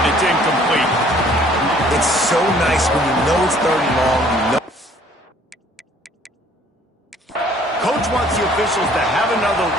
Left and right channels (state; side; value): normal; both; correlation 0.57